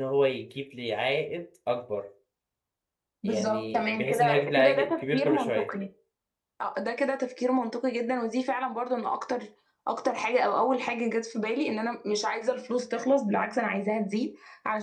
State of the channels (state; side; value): identical; both; correlation 1.00